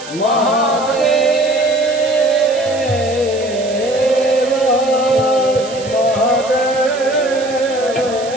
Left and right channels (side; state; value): right; noise; hiss, 15 dB below the sound